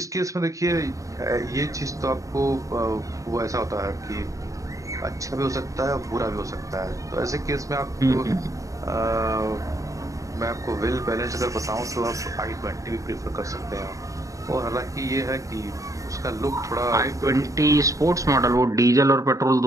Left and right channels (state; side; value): late; left; 0.16 ms